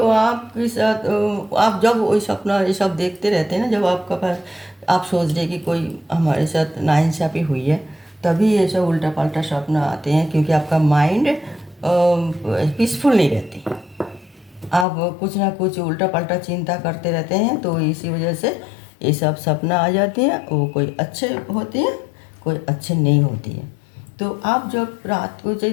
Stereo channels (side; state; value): right; drops out; at 14.9 s